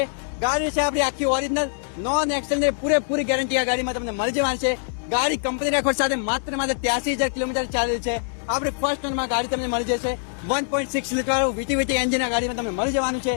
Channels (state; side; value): silent; right; digital silence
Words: ગાડી છે આપણી આખી ઓરિજિનલ નોન એક્સેલની પૂરેપૂરી ગેરંટી આ ગાડીમાં તમને મળી જવાની છે. ગાડી કંપની રેકોર્ડ સાથે માત્ર 83,000 કિલોમીટર ચાલેલ છે. આપણી ફર્સ્ટ ઓનરમાં ગાડી તમને મળી જશે. 1.6 લીટર વીટી એન્જિન આ ગાડીમાં તમને મળી જવાનું છે.